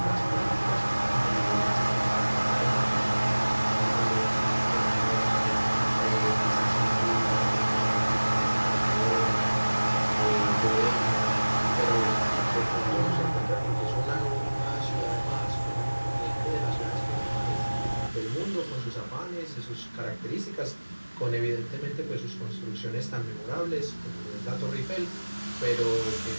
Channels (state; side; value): inverted; both; correlation -1.00